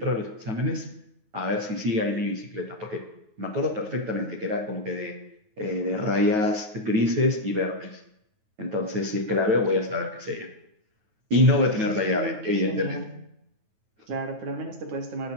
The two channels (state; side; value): late; left; 9.3 ms